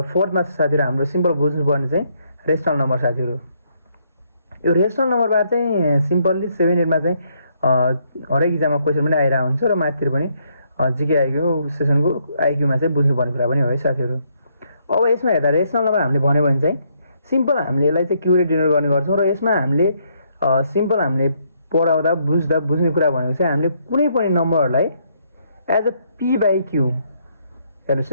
साथीहरु हाम्रो सिम्पल बुझ्नुपर्ने चाहिँ रेशनल नम्बर साथीहरु। यो रेशनल नम्बरबाट चाहिँ सिम्पली 7 8 मा चाहिँ हरेक एक्जाममा क्वेसन पनि आइरा हुन्छ र माथितिर पनि जीके आइक्यू सेसनको आइक्यूमा चाहिँ बुझ्नुपर्ने कुरा पनि हो है साथीहरु। अब यसमा हेर्दा रेशनल नम्बर हामीले भन्यो भने चाहिँ सिम्पल हामीले यसलाई चाहिँ क्यू ले डिनोट गर्ने गर्छौं। र यसमा हामीले सिम्पल हामीले पढाउँदा बुझ्ने कुरा भनेको चाहिँ हामीले कुनै पनि नम्बरलाई as a p by q, हेर्नुस्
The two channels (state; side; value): inverted; both; correlation -0.72